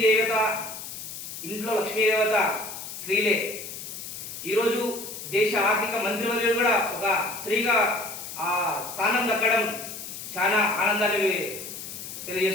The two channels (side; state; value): left; noise; hiss, 10 dB below the sound